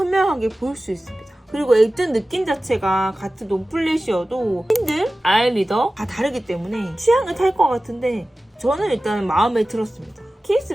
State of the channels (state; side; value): normal; both; correlation 0.96